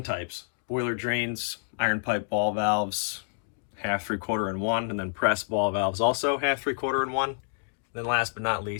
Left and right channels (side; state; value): right; silent; 59 dB below the other